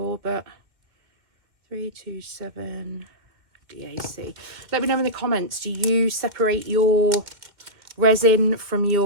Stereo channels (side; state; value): left; late; 2.1 ms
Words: but 327 DAC. Let me know in the comments, do you separate your resin from